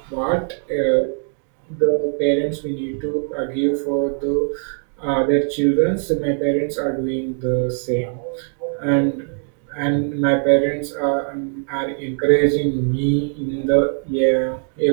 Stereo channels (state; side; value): silent; left; 56 dB below the other